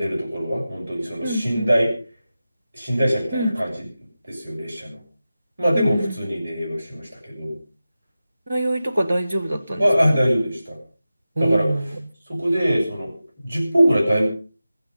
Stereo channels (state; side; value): inverted; both; correlation -0.94